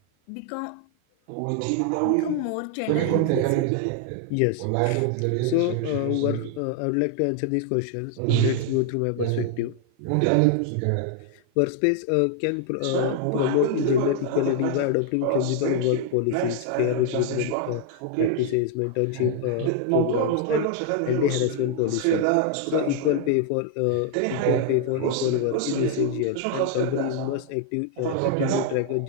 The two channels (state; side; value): different; both; correlation 0.00